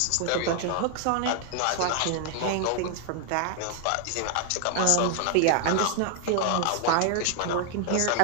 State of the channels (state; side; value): different; both; correlation 0.00